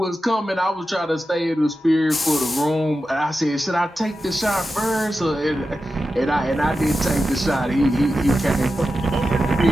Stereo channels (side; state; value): both; normal; correlation 0.92